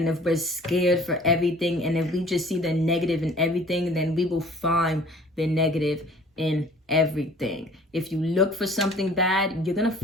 if we're scared for everything, and if we just see the negative in everything, then we will find the negative in everything. If you look for something bad, you're gonna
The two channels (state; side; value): normal; both; correlation 0.51